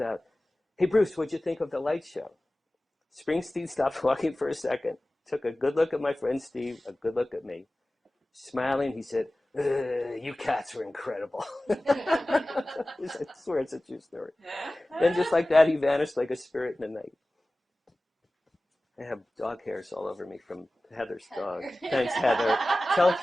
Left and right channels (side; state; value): both; normal; correlation 0.97